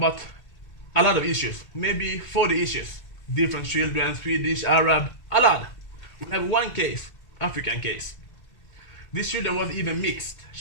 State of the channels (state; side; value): late; right; 2.0 ms